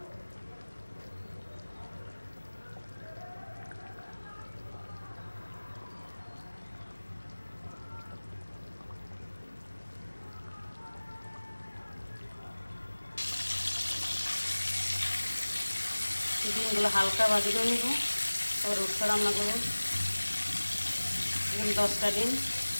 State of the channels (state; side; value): inverted; both; correlation -1.00